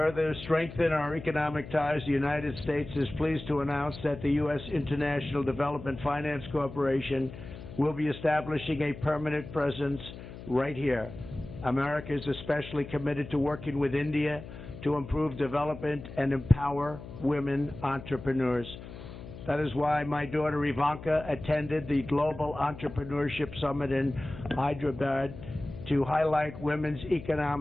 strengthen our economic ties, the United States is pleased to announce that the U.S. International Development Finance Corporation will be establishing a permanent presence right here. America is especially committed to working with India to improve development and empower women entrepreneurs. That is why my daughter Ivanka attended the Global Entrepreneurship Summit in Hyderabad to highlight women's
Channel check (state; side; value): noise; left; hum, 13 dB below the sound